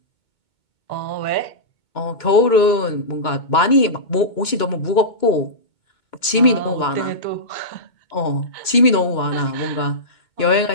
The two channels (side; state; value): right; late; 2.2 ms